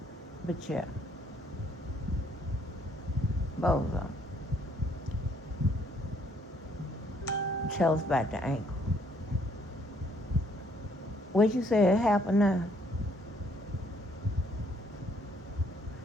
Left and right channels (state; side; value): normal; both; correlation 0.66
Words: But yeah, Bozo. Tell us about the ankle. What you said happened now?